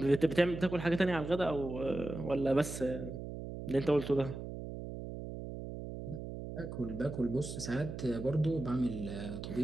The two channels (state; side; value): noise; right; hum, 8 dB below the sound